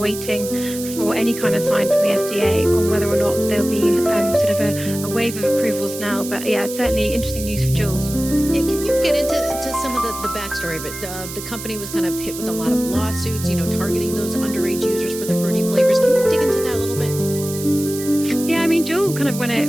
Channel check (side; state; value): right; noise; hiss, 10 dB below the sound